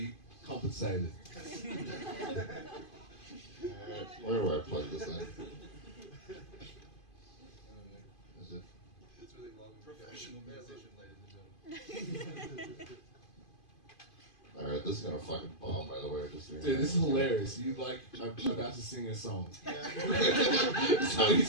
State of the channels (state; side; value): late; right; 2.5 ms